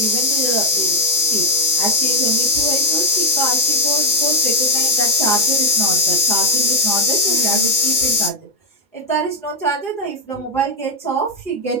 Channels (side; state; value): right; late; 5.0 ms